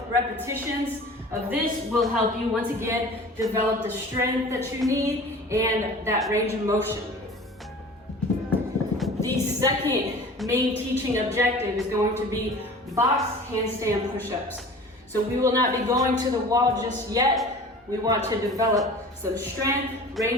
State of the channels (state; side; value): normal; both; correlation 0.41